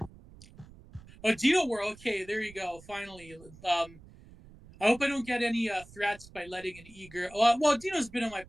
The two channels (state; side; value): noise; right; rumble, 21 dB below the sound